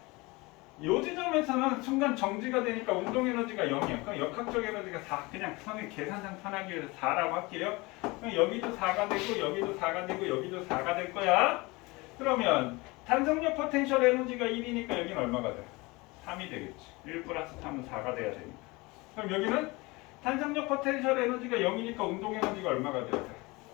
요 지점에서는 순간 정지가 되니까 운동 에너지가 0이야. 그럼 역학적 에너지가 4. 그냥 선생님 계산상 편하기 위해서 4라고 할게요. 그럼 여기도 4가 되고 여기도 4가 되고 여기도 4가 될 거야. 그러면 탄성력 포텐셜 에너지가 1이니까 여기는 얼마가 돼? 3이 되겠지. 1 플러스 3은 4가 돼야 되니까. 그럼 여기는 탄성력 포텐셜 에너지가 0이니까 운동 에너지가 얼마가 돼야 돼?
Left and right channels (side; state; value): right; quieter; 24.0 dB